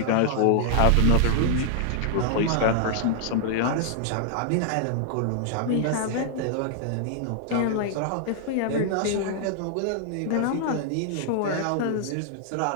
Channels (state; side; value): different; both; correlation -0.01